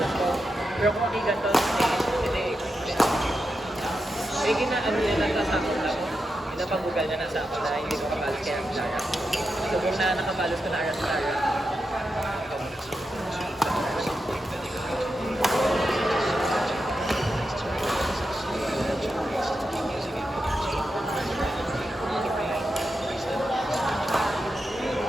ko. Pero kung hindi ganito, hindi. Eh, ginaano niya nagkasakot lang. Pinapagugal niya nasa ako na hindi ko kapalos kaya ang Lara. So, kung na nakapalos ko na Aras Lara.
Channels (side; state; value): both; normal; correlation 0.88